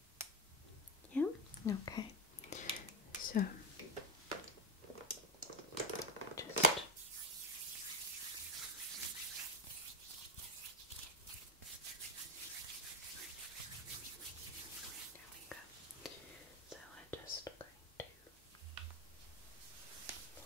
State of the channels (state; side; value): normal; both; correlation 0.12